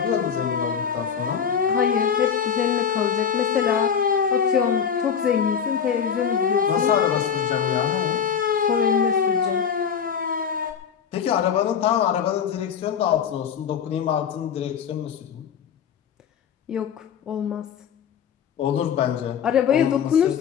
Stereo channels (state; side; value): quieter; right; 7.5 dB